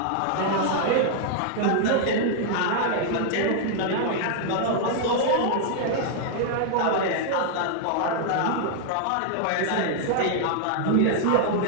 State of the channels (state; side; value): different; both; correlation -0.01